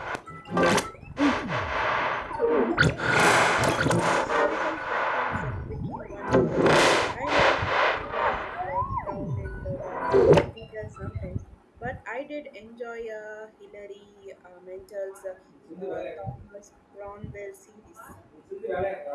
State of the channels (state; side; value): identical; both; correlation 1.00